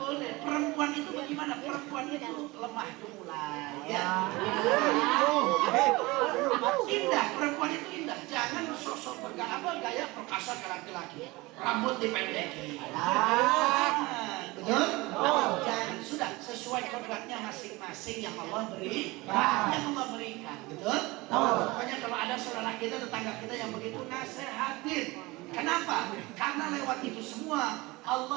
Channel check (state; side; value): quieter; left; 22.4 dB